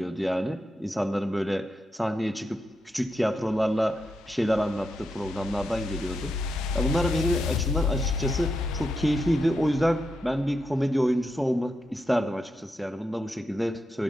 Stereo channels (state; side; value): normal; both; correlation 0.85